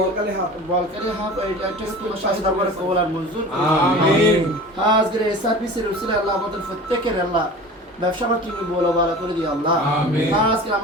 হাফ এটা একটা তোমার শাহী দরবারে কবুল আর মঞ্জুর আমিন। আজকের এই সার্ভিসের উসিলে আল্লাহ আমাদের প্রত্যেকের আল্লাহ ব্যবসা বাণিজ্য তুমি বলো ভালো করে দিও আল্লাহ আমিন। আজকে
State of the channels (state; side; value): normal; both; correlation 0.38